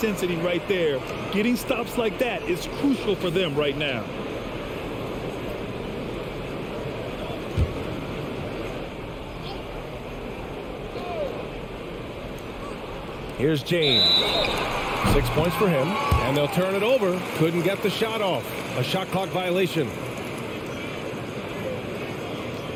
right there. Getting stops like that is crucial for them right now. Here's James. 6 points for him, and they'll turn it over. Couldn't get the shot off. A shot clock violation.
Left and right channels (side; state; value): both; identical; correlation 1.00